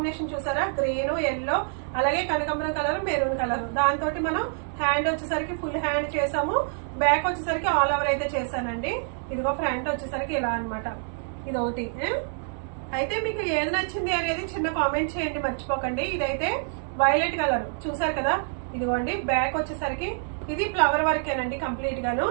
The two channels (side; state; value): left; silent; 60 dB below the other